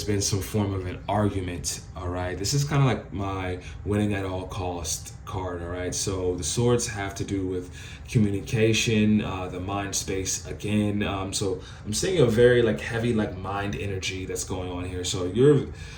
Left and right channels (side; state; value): both; identical; correlation 1.00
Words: been some form of an argument, all right? This is kind of like my winning at all cost card, all right? So the swords have to do with communication, the mind space again. So I'm seeing a very like heavy like mind energy that's going on here. So you're